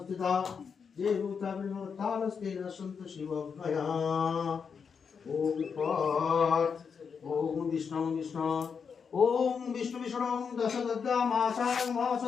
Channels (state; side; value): quieter; right; 6.2 dB